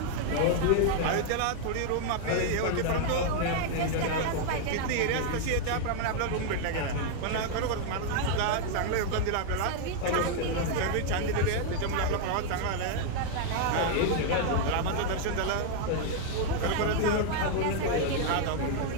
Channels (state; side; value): different; both; correlation 0.00